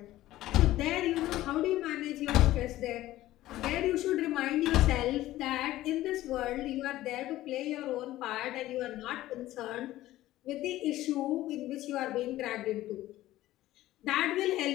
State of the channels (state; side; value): quieter; right; 15.4 dB